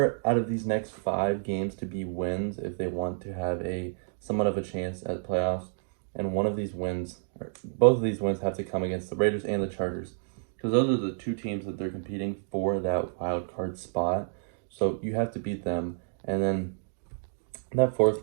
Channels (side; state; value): left; silent; digital silence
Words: out of these next 5 games to be wins if they want to have a somewhat of a chance at playoffs. And one of these wins, or both of these wins, have to come against the Raiders and the Chargers, because those are the 2 teams that they're competing for that wild card spot. So you have to beat them. And then that